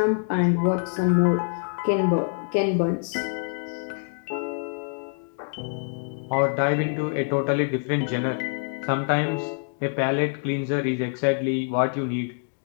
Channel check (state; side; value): silent; right; digital silence